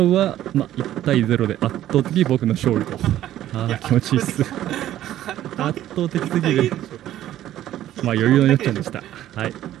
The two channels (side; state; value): left; quieter; 12.9 dB